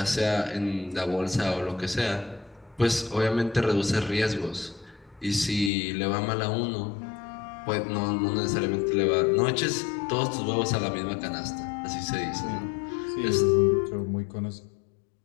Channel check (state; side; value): drops out; right; at 5.7 s